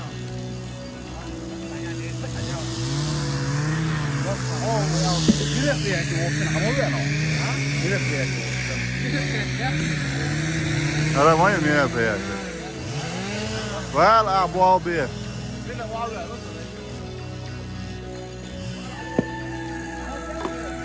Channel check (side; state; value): both; identical; correlation 1.00